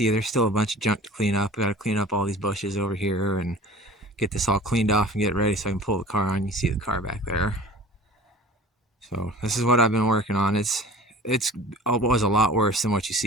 there's still a bunch of junk to clean up. I got to clean up all these bushes over here and get this all cleaned off and get ready so I can pull the car on. You see the car back there. So this is what I've been working on. It was a lot worse than what you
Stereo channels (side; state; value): both; normal; correlation 0.43